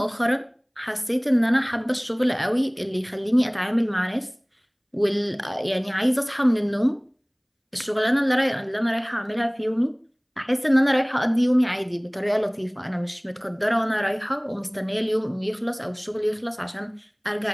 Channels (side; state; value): both; identical; correlation 1.00